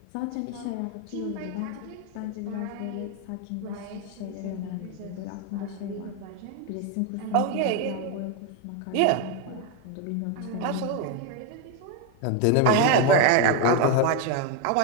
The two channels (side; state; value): both; different; correlation 0.02